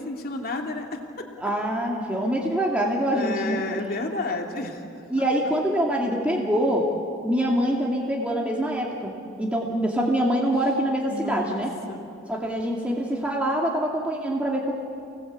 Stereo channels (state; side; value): normal; both; correlation 0.58